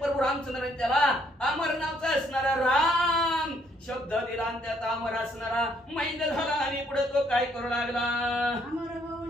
प्रभू रामचंद्राने त्याला अमर नावचा असणारा राम शब्द दिला आणि त्यात अमर असणारा मैद झाला. आणि पुढे तो काय करू लागला? अमर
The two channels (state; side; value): normal; both; correlation 0.68